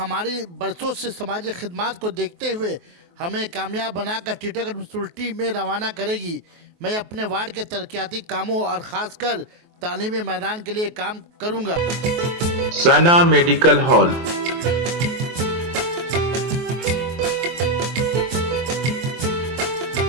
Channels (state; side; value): late; left; 23 ms